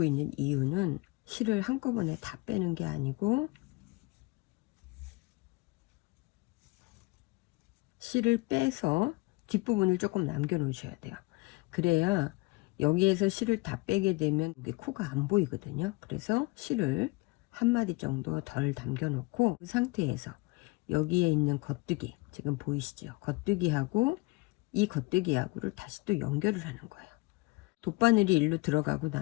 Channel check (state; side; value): quieter; right; 24.0 dB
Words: 있는 이유는 실을 한꺼번에 다 빼는 게 아니고 실을 빼서 뒷부분을 조금 남겨 놓으셔야 돼요. 그래야 여기에서 실을 다 빼게 되면 여기 코가 안 보이거든요. 그래서 실을 한 마디 정도 덜 담겨 놓고 그 상태에서 여기에 있는 겉뜨기 지금 보이시죠? 겉뜨기하고 이 겉뜨기하고를 다시 또 연결을 하는 거예요. 돗바늘이 일로 들어가고